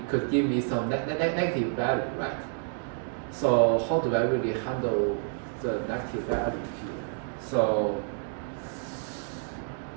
could give me some negative value, right? So how do I really handle the negative value here? So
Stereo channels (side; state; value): left; silent; 59 dB below the other